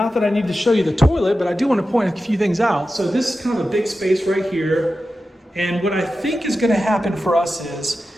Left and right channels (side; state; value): both; normal; correlation 0.92